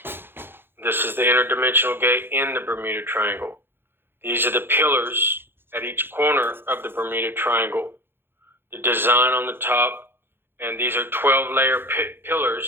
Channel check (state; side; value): late; left; 0.10 ms